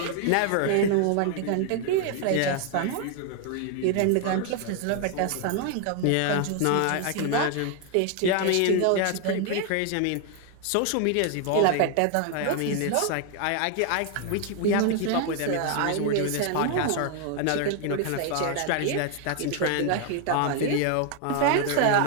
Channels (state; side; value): different; both; correlation 0.00